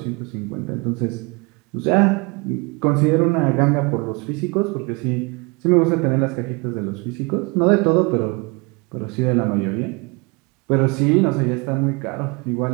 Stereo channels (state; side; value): quieter; left; 28.8 dB